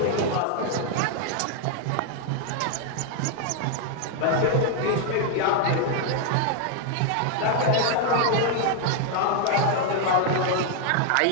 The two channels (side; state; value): both; different; correlation 0.01